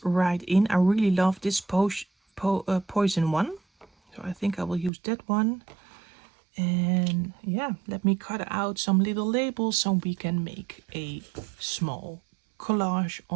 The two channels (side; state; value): left; drops out; at 4.9 s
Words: right in. I really love this poison one. So I think I will use that one. And yeah, let me cut out some little labels so we can make a small collage